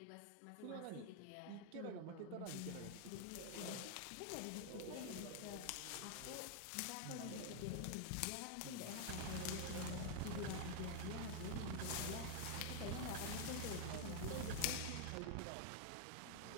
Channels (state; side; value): different; both; correlation 0.00